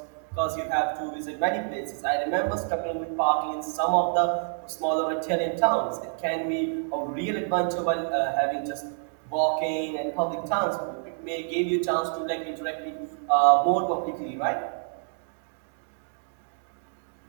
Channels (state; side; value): silent; left; digital silence